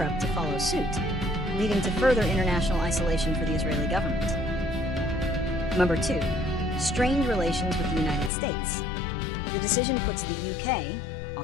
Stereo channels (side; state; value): right; drops out; at 8.3 s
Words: to follow suit, leading to further international isolation for the Israeli government. Number 2. Strained relations with the United States. The decision puts the UK,